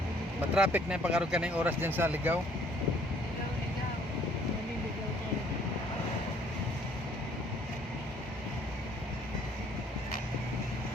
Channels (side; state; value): both; normal; correlation 0.61